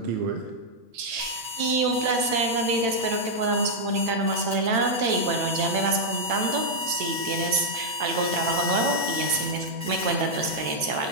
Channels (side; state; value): left; late; 8.9 ms